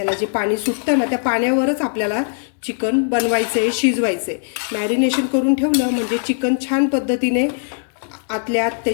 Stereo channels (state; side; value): silent; right; digital silence